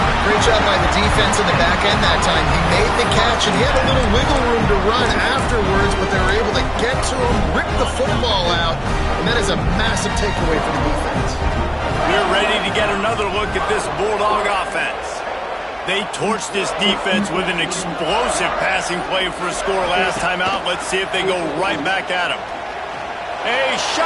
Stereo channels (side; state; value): both; identical; correlation 1.00